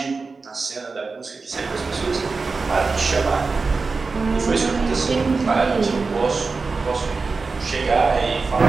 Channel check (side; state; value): left; quieter; 4.3 dB